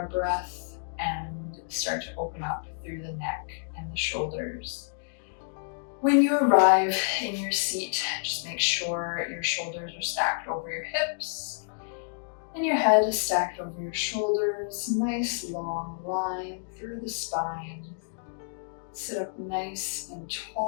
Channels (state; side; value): silent; right; digital silence